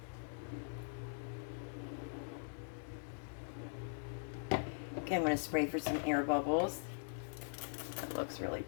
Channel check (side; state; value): right; silent; digital silence